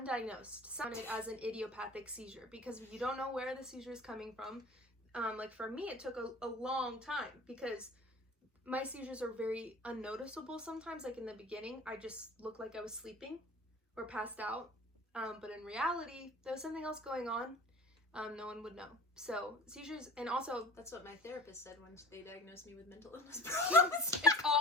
sounded as an idiopathic seizure, because you don't know where the seizure is coming from. Like for me, it took a long time, because my seizures are very unnoticeable sometimes. Like in the beginning, I just looked like I was sleeping or passed out. But in reality, there was something else going on. No one would know. So seizures, and also That's what my therapist said when they diagnosed me with mental illness problems. it's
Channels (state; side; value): normal; both; correlation 0.40